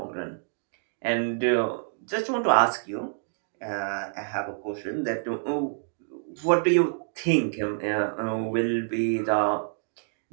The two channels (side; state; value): left; silent; digital silence